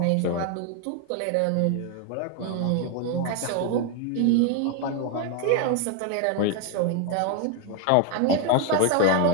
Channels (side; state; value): both; different; correlation 0.01